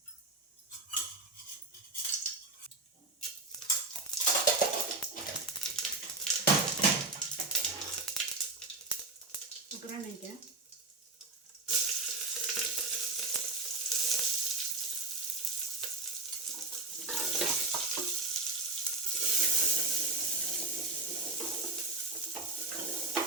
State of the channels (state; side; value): quieter; left; 3.2 dB